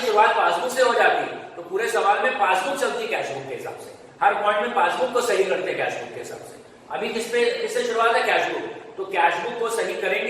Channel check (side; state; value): both; identical; correlation 1.00